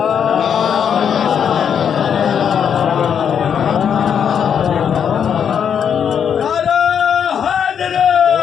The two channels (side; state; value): right; quieter; 7.9 dB